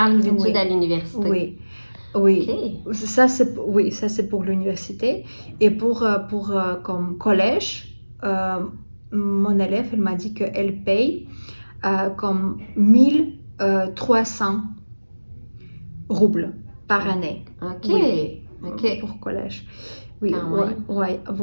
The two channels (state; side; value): inverted; both; correlation -1.00